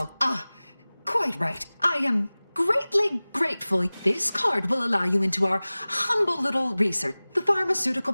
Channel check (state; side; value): inverted; both; correlation -0.99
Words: Quite right. I am greatly grateful. This card will allow you into our humble little research. The pharmaceutical